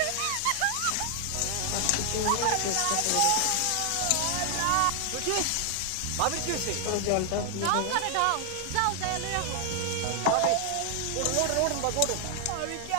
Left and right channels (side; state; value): both; different; correlation 0.00